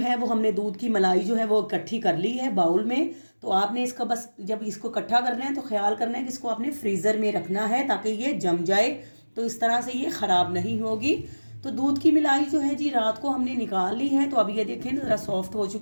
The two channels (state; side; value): inverted; both; correlation -1.00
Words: वो हमने दूध की मलाई जो है वो इकट्ठी कर ली है बाउल में। तो आपने इसका बस जब इसको इकट्ठा करना है तो ख्याल करना है कि इसको आपने फ्रीज़र में रखना है ताकि ये जम जाए, तो इस तरह से ये ख़राब नहीं होगी। तो दूध की मलाई जो है जी रात को हमने निकाल ली है। तो अब ये देखें ज़रा सॉफ्ट हो